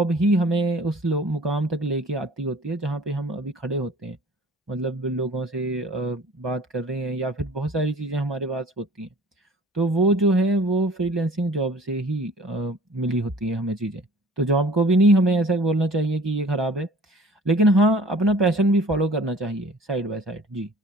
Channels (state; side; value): normal; both; correlation 0.48